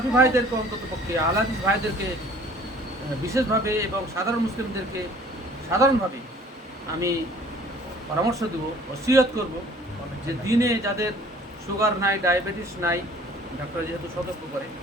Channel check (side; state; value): both; normal; correlation 0.52